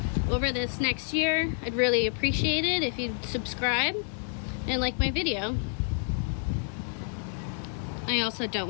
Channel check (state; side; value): silent; right; 59 dB below the other